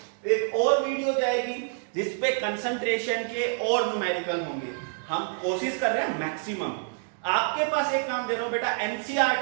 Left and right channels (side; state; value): left; silent; 60 dB below the other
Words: एक और वीडियो जाएगी जिसपे कंसंट्रेशन के और न्यूमेरिकल होंगे। हम कोशिश कर रहे हैं मैक्सिमम। आपके पास एक काम दे रहा हूं बेटा,